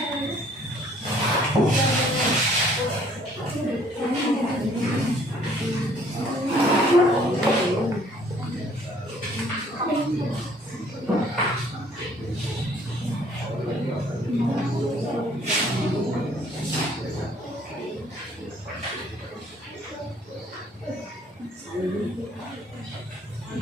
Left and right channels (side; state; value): both; normal; correlation 0.59